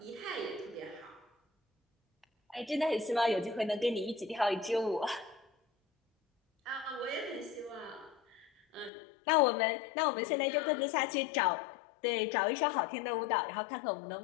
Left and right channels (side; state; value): right; drops out; at 8.9 s